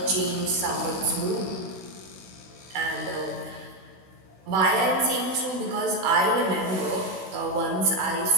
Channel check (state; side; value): late; left; 16 ms